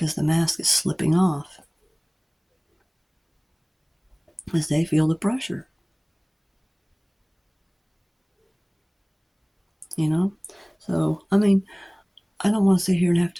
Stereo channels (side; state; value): both; identical; correlation 1.00